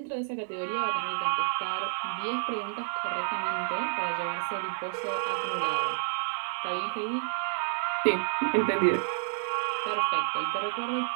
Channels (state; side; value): silent; left; 58 dB below the other